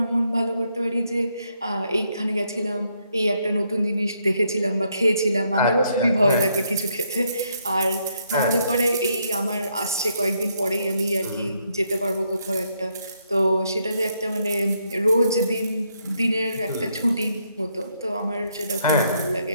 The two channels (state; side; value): inverted; both; correlation -0.75